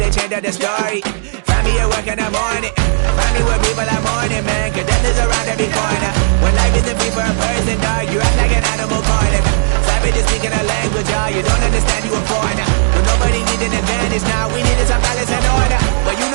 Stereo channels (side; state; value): left; silent; digital silence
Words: change up the story. Find me at work in the morning, find me where people are mourning, man, cause death is around every corner. When life isn't free for a person, dog, you act like an animal corner. Savage is speaking a language, y'all, you don't understand, you a foreigner. But nobody needs an advantage now, we needed some balance and order. But you